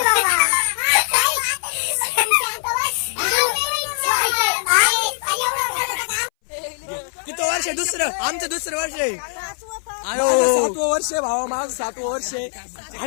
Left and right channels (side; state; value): right; silent; 62 dB below the other